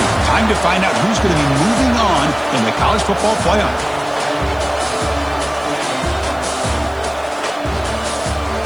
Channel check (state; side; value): noise; right; hiss, 28 dB below the sound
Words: Time to find out who's going to be moving on in the college football playoff.